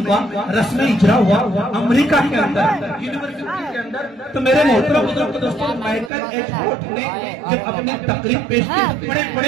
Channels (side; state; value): left; drops out; at 6.1 s